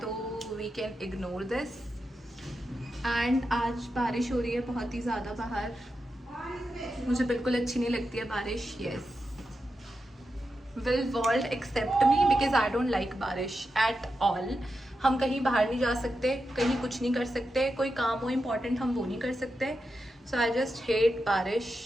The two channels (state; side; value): normal; both; correlation 0.88